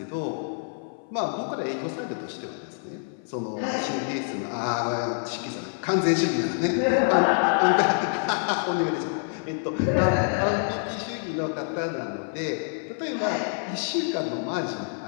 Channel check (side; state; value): right; silent; 56 dB below the other